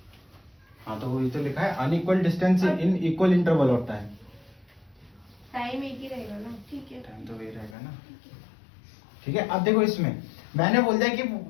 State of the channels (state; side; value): drops out; right; at 7.8 s